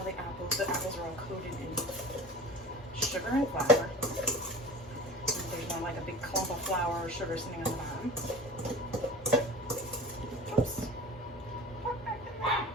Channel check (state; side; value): normal; both; correlation 0.37